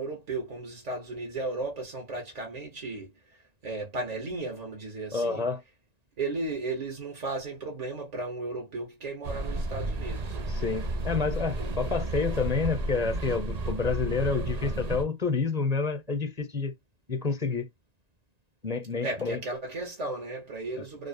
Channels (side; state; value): left; late; 1.9 ms